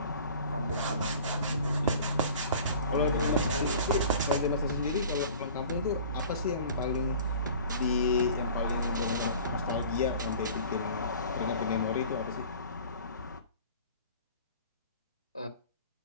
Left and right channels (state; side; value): inverted; both; correlation -0.44